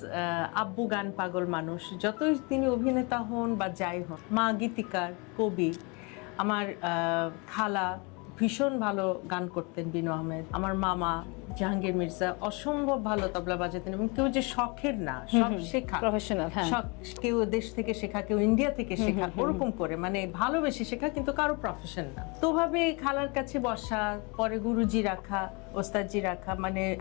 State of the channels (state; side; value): quieter; right; 30.2 dB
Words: আব্বু গান পাগল মানুষ, যতই তিনি অভিনেতা হন বা যাই হন। মা গীতিকার, কবি। আমার খালা ভীষণ ভালো গান করতেন, বিনু আহমেদ। আমার মামা জাহাঙ্গীর মির্জা অসম্ভব ভালো তবলা বাজাতেন, এবং কেউ যে শখের না, সব শেখা, প্রফেশনাল। কেউ দেশ থেকে শেখা, কেউ ইন্ডিয়া থেকে শেখা, ওরকম করে মানে ভালোবেসে শেখা, কিন্তু কারো প্রফেশন না। তো ভাবে খালার কাছে বসা, পরে গুরুজি রাখা, ওস্তাদজি রাখা, মানে